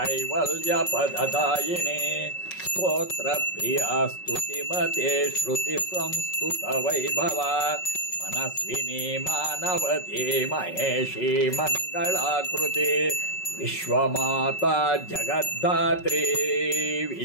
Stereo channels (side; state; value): right; late; 5.4 ms